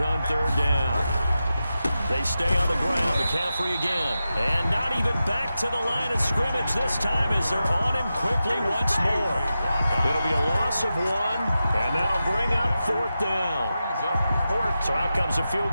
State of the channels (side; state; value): both; inverted; correlation -0.91